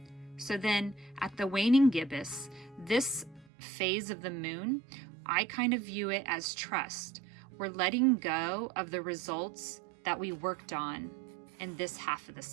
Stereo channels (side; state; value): left; drops out; at 3.5 s